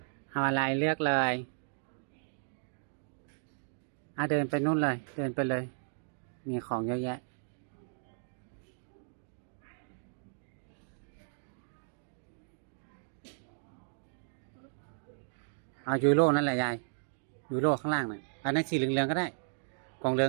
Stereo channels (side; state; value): left; silent; digital silence